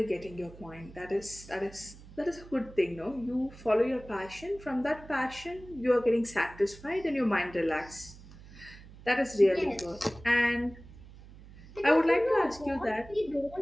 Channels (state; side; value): noise; right; hum, 19 dB below the sound